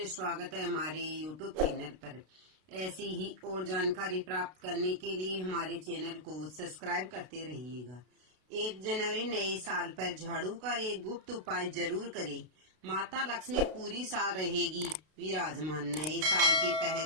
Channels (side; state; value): left; late; 32 ms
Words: स्वागत है हमारे YouTube चैनल पर। ऐसी ही और जानकारी प्राप्त करने के लिए हमारे चैनल को सब्सक्राइब करते रहिएगा। 1 जनवरी नए साल पर झाड़ू का एक गुप्त उपाय जरूर करें। माता लक्ष्मी पूरी साल रहेगी विराजमान। नए साल के